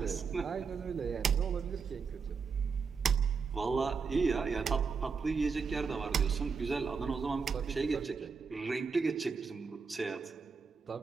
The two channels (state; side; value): quieter; left; 5.3 dB